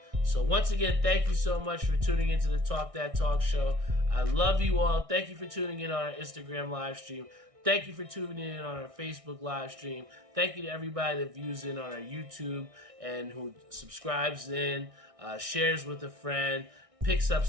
So once again, thank you so much for tuning into the Talk That Talk Show. I love you all. Thank you for tuning in on our Instagram live stream. Thank you for tuning in on our Facebook live stream. Thank you to everybody that views in on our YouTube and who subscribes in, shares with a friend, picks up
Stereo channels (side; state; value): left; late; 1.6 ms